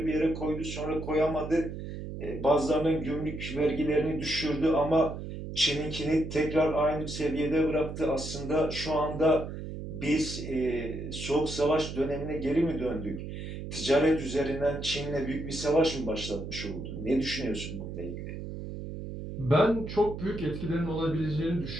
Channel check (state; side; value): noise; right; hum, 8 dB below the sound